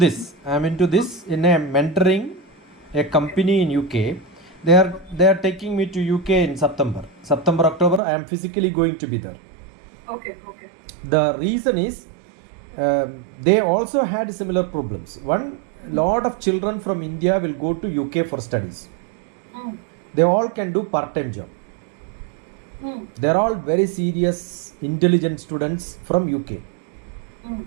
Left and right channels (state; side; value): drops out; left; at 8.0 s